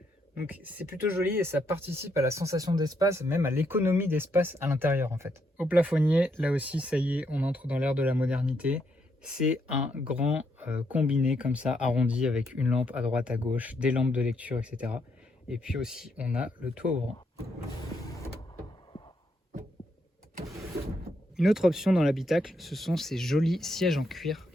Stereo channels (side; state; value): both; normal; correlation 0.77